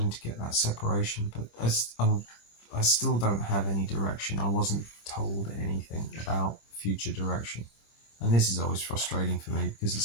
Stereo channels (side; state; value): right; late; 26 ms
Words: to get that separation, but I still don't have any direction. I wasn't told anything about future direction. And this is always frustrating for me because